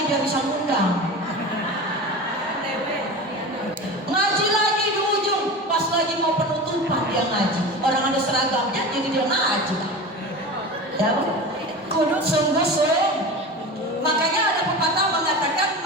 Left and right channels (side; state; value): both; normal; correlation 0.30